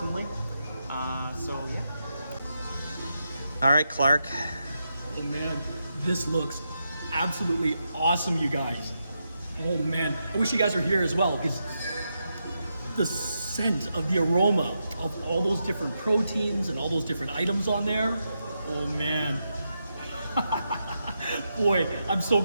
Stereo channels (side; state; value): both; inverted; correlation -0.85